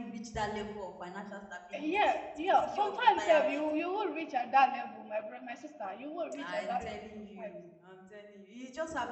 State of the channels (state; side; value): identical; both; correlation 1.00